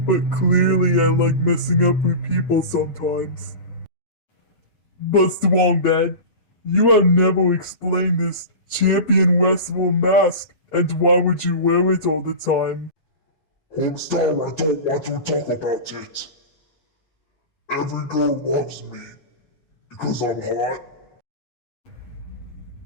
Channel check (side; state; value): right; late; 8.4 ms